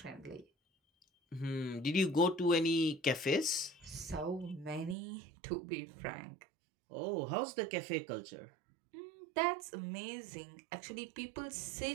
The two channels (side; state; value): left; drops out; at 5.0 s